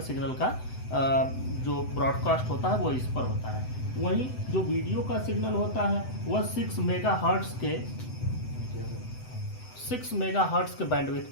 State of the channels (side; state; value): right; late; 7.9 ms